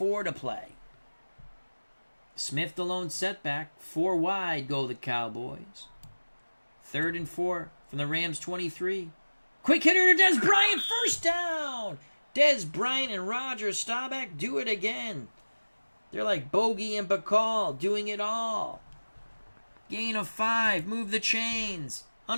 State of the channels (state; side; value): inverted; both; correlation -1.00